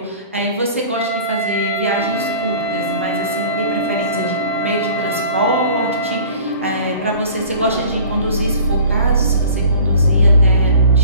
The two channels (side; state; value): both; inverted; correlation -0.46